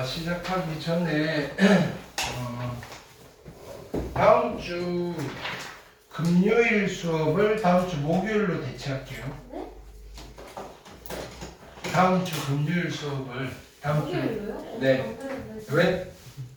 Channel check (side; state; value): both; identical; correlation 1.00